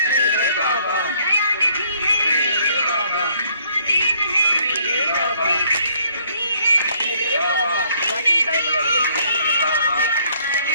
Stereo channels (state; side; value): inverted; both; correlation -0.64